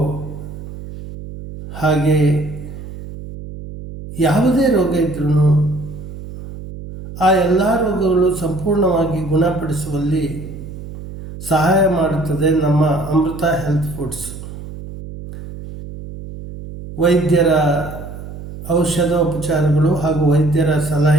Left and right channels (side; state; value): right; noise; hum, 12 dB below the sound